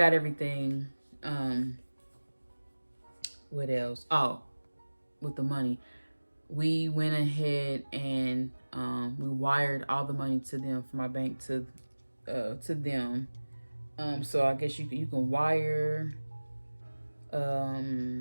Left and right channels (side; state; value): both; inverted; correlation -1.00